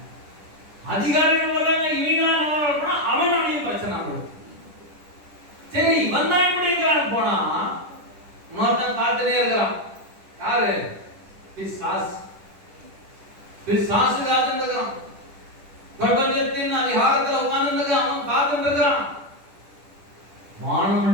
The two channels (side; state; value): left; late; 10 ms